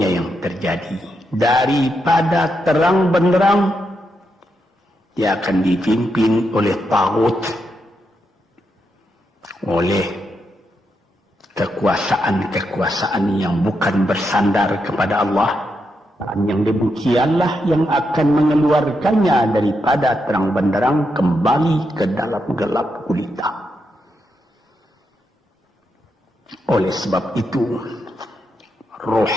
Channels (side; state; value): both; normal; correlation 0.83